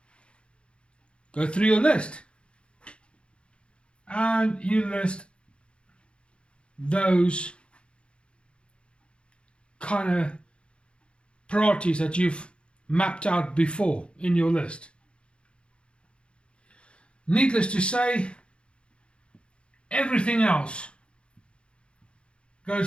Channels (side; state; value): right; late; 0.057 ms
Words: Go through your list and you list those kind of priorities that you've mapped out before in your list. Needless to say, everything else